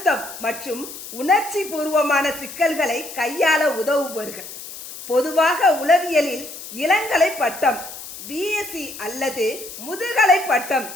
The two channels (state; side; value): noise; left; hiss, 12 dB below the sound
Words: மற்றும் உணர்ச்சி பூர்வமான சிக்கல்களை கையாள உதவுபவர்கள். பொதுவாக உளவியலில் இளங்கலை பட்டம், பிஎஸ்சி அல்லது முதுகலை பட்டம்,